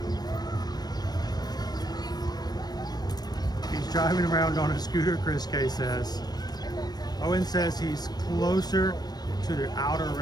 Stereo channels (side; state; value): right; late; 0.19 ms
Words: He's driving around on a scooter, Chris K says. Owen says he's closer to the outer